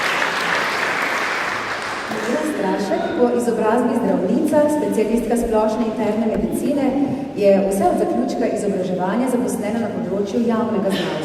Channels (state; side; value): identical; both; correlation 1.00